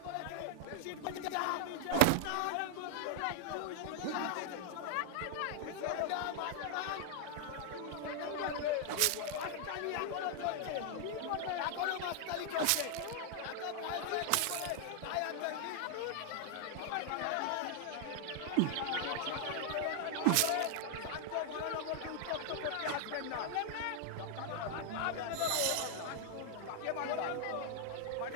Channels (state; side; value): different; both; correlation 0.00